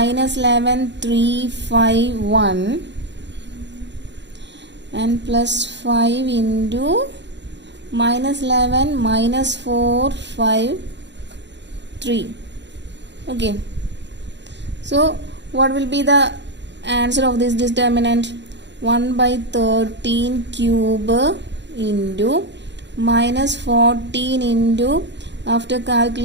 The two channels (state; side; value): late; left; 0.52 ms